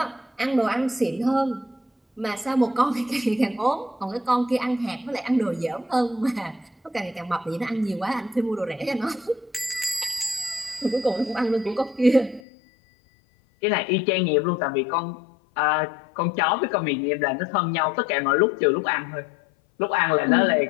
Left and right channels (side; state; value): right; drops out; at 12.4 s